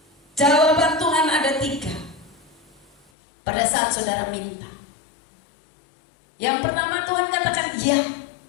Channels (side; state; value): right; drops out; at 3.1 s